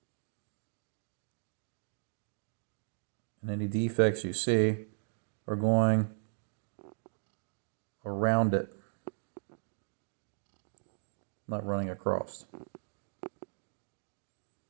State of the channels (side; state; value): left; silent; digital silence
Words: And any defects you see are going around it, not running across.